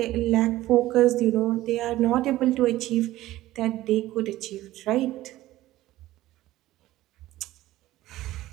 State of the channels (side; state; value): left; quieter; 15.8 dB